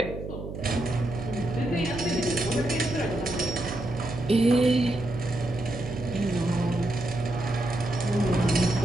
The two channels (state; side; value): noise; right; hum, 8 dB below the sound